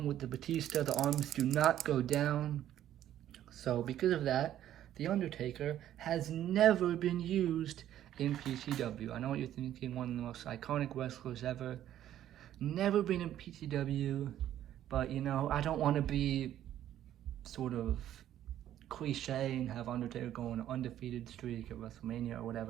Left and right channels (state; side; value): quieter; left; 11.8 dB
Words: with the Batista. The arms do not go down. So because of that, the Undertaker has never been used in PTW. I know what you're thinking, one of the most iconic wrestlers ever. Never been in PTW, but you know, I don't want to be sort of cliche and have Undertaker go on an undefeated streak at WrestleMania or